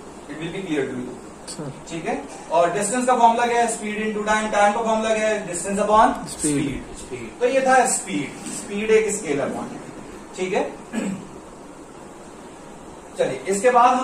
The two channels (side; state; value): both; identical; correlation 1.00